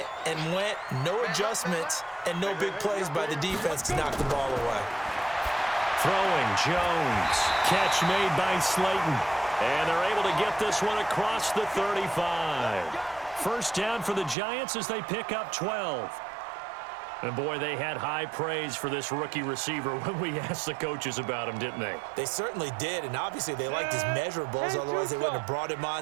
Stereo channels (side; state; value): left; drops out; at 14.4 s